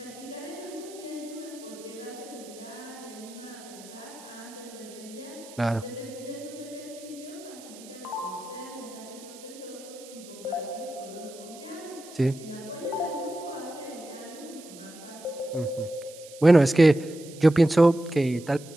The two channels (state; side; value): noise; right; hiss, 18 dB below the sound